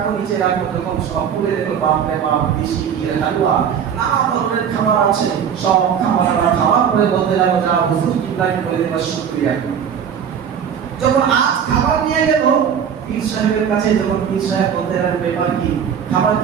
নিচে রাখো, যখন সব খুলে দেখলো বাপরে বাপ, দেশি হালুয়া, নানা ধরনের খাবার আছে, সব খাবার খাওয়ার পরে বলতে লাগলো, যা হুজুর কিবলাকে বলে দেবা শুকরিয়া। যখন আজ খাবার নিয়ে গেল পীর সাহেবের কাছে, যখন পীর সাহেব বলতে লাগলো, ব্যাপার কি, খাবার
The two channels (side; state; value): left; quieter; 8.0 dB